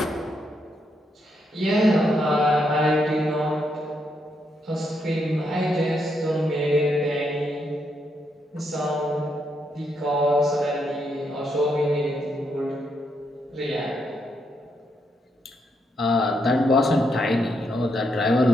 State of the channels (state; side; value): normal; both; correlation 0.79